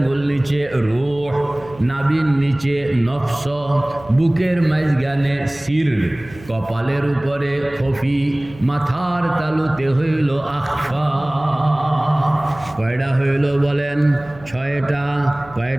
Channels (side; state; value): right; noise; hum, 20 dB below the sound